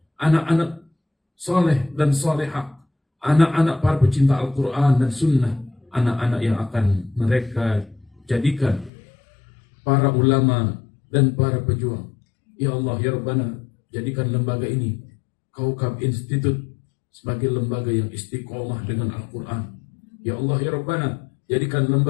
anak-anak soleh dan solehah, anak-anak para pecinta Al-Quran dan Sunnah, anak-anak yang akan mereka jadikan para ulama dan para pejuang. Ya Allah, ya Rabbana, jadikan lembaga ini Kaukab Institute sebagai lembaga yang istiqomah dengan Al-Quran. Ya Allah, ya Rabbana, jadikan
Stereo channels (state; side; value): drops out; right; at 8.9 s